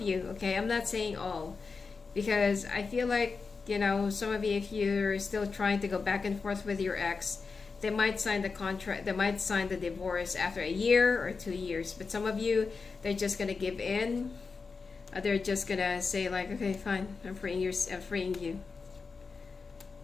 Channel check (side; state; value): right; quieter; 4.7 dB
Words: you, okay, I'm not saying all, because I feel like, you know, some of you, if you're still trying to go back and forth with your ex, they might sign the contract, they might sign the divorce after a year or 2 years. But some of you, they're just gonna give in. They're just gonna say like, okay, fine, I'm freeing you.